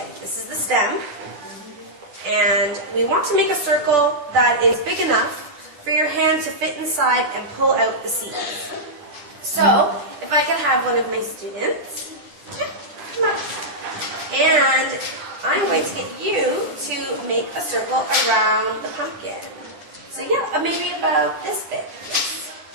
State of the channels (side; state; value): left; late; 10 ms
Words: This is the stem, and we want to make a circle that is big enough for your hand to fit inside and pull out the seeds. So, if I could have one of my students, come up, and I'm going to get you to make a circle around the pumpkin. So yeah, maybe about this big.